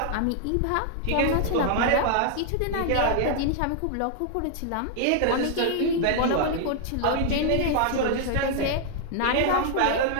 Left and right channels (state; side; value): different; both; correlation 0.00